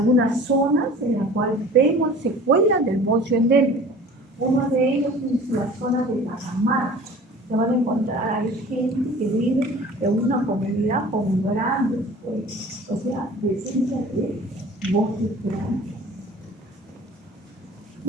zonas en las cuales vemos secuelas del bocio endémico. Uno de ellos es la zona de la cámara, se van a encontrar, hay gente que vive en una comunidad con grandes, o sea, presencia de bosques grandes.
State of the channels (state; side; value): normal; both; correlation 0.44